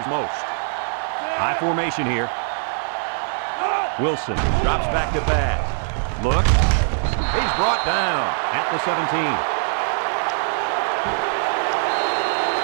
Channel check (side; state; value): left; silent; 64 dB below the other